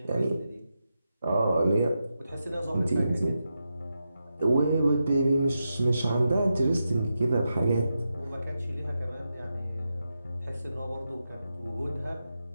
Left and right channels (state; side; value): inverted; both; correlation -0.88